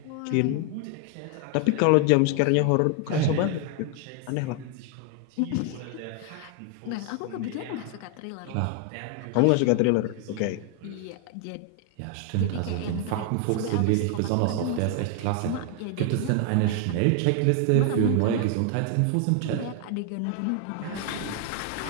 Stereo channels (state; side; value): different; both; correlation 0.00